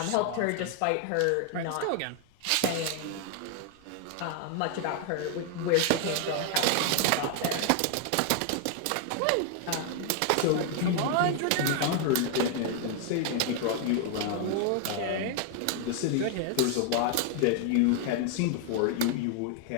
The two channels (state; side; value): different; both; correlation 0.00